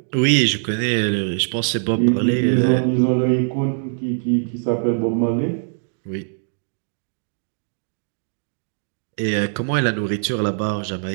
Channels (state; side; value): silent; left; digital silence